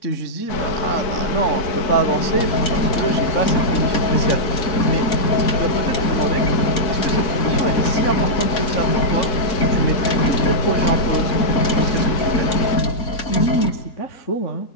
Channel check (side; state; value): right; late; 4.3 ms